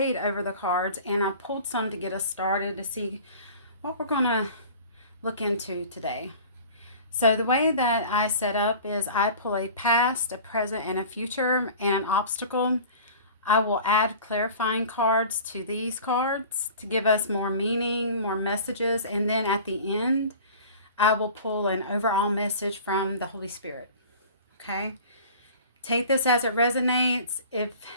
over the cards, and I pulled some to get us started to see what we're going to look into today. So the way that I set up is I pull a past, a present, and a future, and an obstacle. I will add clarifying cards to these cards to give us more meaning, more messages, and then at the end, I will pull an overall message from the Holy Spirit. Okay? Take this as it resonates. If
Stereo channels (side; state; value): both; inverted; correlation -0.42